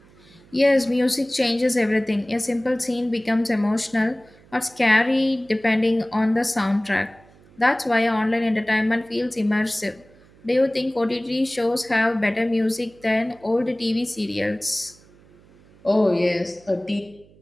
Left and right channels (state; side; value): noise; right; hum, 27 dB below the sound